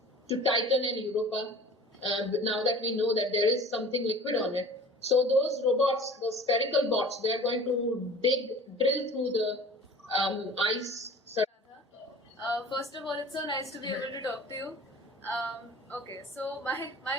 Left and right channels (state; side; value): normal; both; correlation 0.43